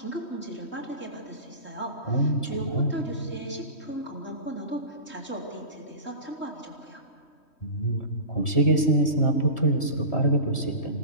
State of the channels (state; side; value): late; right; 3.1 ms